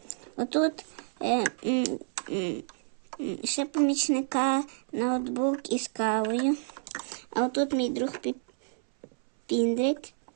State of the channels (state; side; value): silent; left; 58 dB below the other